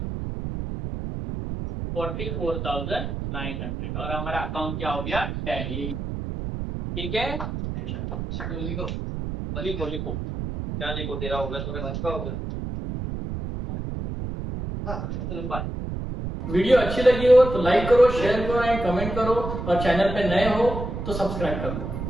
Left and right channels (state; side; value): noise; right; rumble, 5 dB below the sound